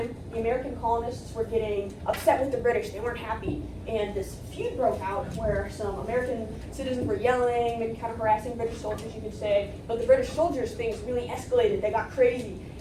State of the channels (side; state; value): both; identical; correlation 1.00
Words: the American colonists were getting upset with the British. They weren't happy. And this feud broke out where some American citizens were yelling, maybe kind of harassing British soldiers, you could say. But the British soldiers, things really escalated. They got crazy.